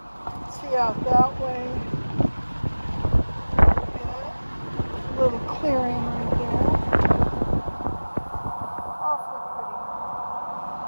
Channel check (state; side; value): inverted; both; correlation -1.00